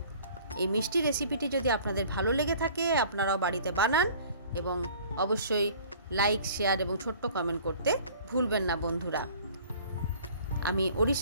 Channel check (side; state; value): both; inverted; correlation -0.50